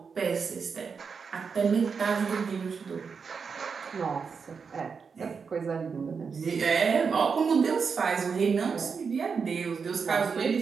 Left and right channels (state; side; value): quieter; left; 5.7 dB